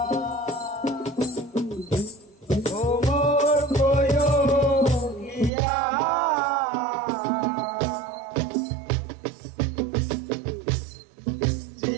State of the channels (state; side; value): drops out; left; at 5.5 s